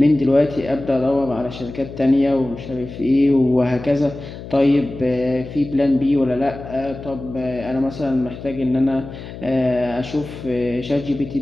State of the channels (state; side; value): noise; left; hum, 12 dB below the sound